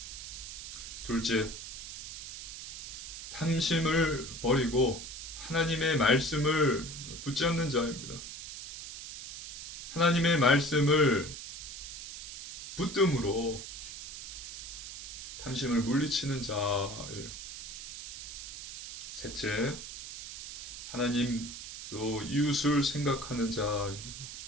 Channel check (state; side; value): noise; right; hiss, 9 dB below the sound